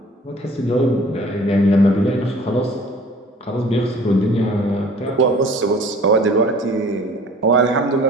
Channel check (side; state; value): both; normal; correlation 0.49